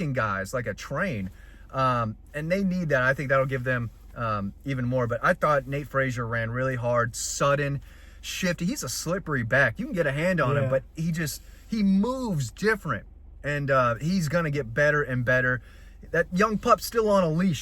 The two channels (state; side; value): identical; both; correlation 1.00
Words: guys like a train. And they need that. I think that'll give them even more. But I thought Nate Frazier ran really hard, sudden, shifty. He's a slippery back. You can get a hand on him, but he moves different. And he's going to get better and better. That young pup's still on a